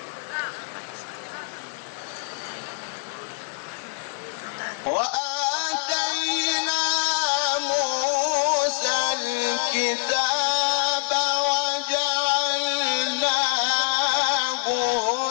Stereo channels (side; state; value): right; silent; digital silence